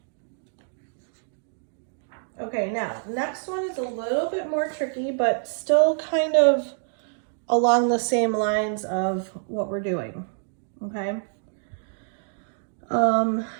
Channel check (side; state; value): left; silent; digital silence